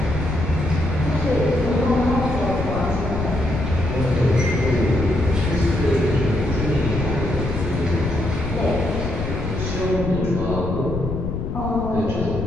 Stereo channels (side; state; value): left; noise; rumble, 4 dB below the sound